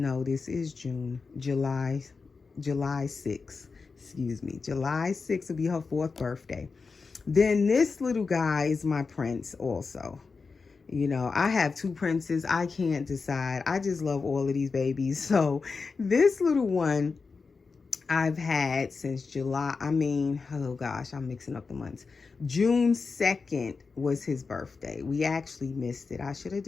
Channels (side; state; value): right; quieter; 4.6 dB